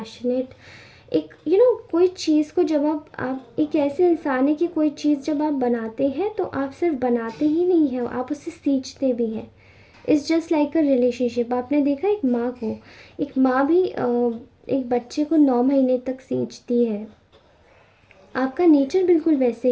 एक कोई चीज़ को जब आप एक ऐसे इंसान है कि कोई चीज़ जब आप बनाते हैं तो आप सिर्फ बनाते ही नहीं हैं, आप उससे सींचते भी हैं। It's just like a relationship. आपने देखा एक माँ को, एक माँ भी एक बच्चे को 9 महीने तक सींचती है। आपका नेचर बिल्कुल वैसे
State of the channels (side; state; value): both; identical; correlation 1.00